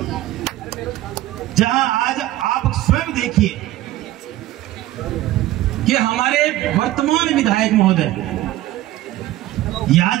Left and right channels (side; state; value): left; quieter; 15.5 dB